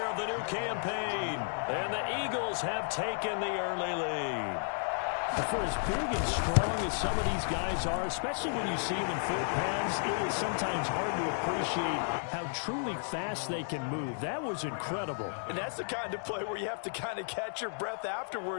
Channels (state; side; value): silent; right; 56 dB below the other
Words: of the new campaign. And the Eagles have taken the early lead. For as big and strong as some of these guys are, especially when you see them in full pads, it is sometimes hard to appreciate how truly fast they can move. That was incredible. And that's the kind of play where you have to kind of catch your breath